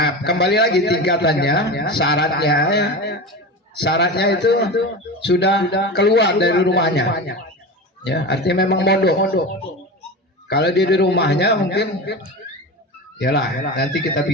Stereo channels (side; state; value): both; normal; correlation 0.27